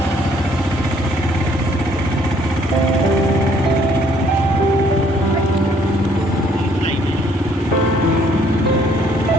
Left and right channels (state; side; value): normal; both; correlation 0.63